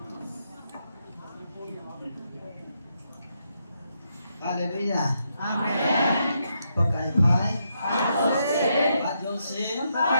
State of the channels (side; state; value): both; inverted; correlation -0.80